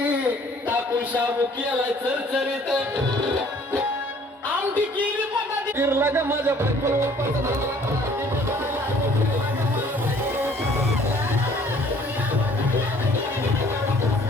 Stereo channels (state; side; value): normal; both; correlation 0.56